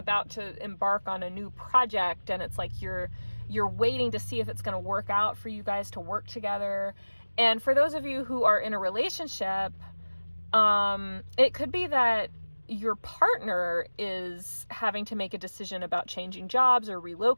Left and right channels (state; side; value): inverted; both; correlation -1.00